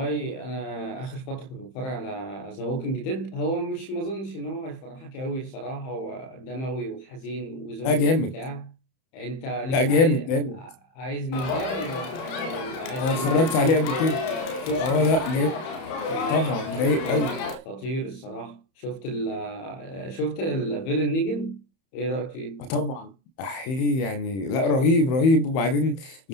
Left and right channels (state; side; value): late; right; 31 ms